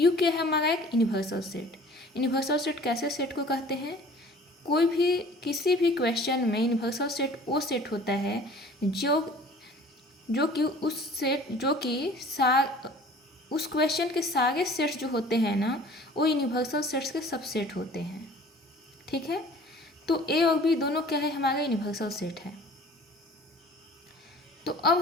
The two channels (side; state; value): both; normal; correlation 0.48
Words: क्या है? हमारा एक यूनिवर्सल सेट। यूनिवर्सल सेट कैसे सेट को कहते हैं कोई भी किसी भी क्वेश्चन में यूनिवर्सल सेट वो सेट होता है जो कि उस क्वेश्चन के सारे सेट्स जो होते हैं ना वो यूनिवर्सल सेट्स के सबसेट होते हैं। ठीक है, तो ए और बी दोनों क्या है, हमारा यूनिवर्सल सेट है। तो अब